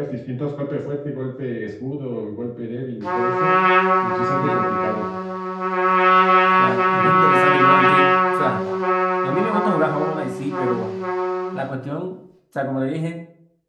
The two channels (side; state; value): both; identical; correlation 1.00